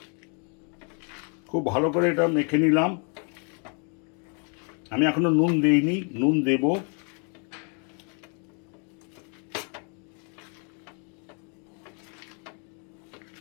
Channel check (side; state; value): right; quieter; 38.9 dB